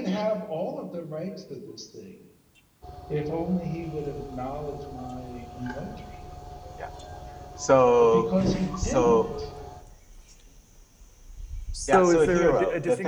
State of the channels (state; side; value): identical; both; correlation 1.00